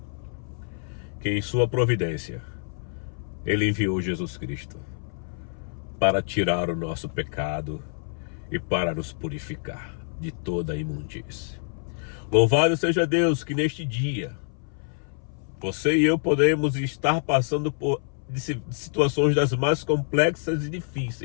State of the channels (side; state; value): right; silent; 59 dB below the other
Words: que em sua providência, ele enviou Jesus Cristo para tirar o nosso pecado e para nos purificar de toda a imundície. Louvado seja Deus que neste dia, você e eu podemos estar passando por situações das mais complexas e